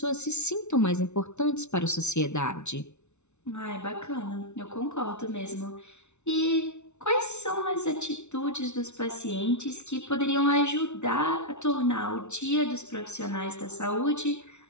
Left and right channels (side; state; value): right; late; 0.82 ms